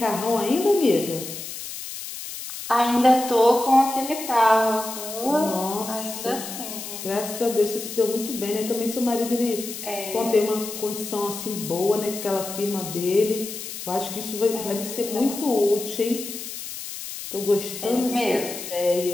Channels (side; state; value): left; noise; hiss, 9 dB below the sound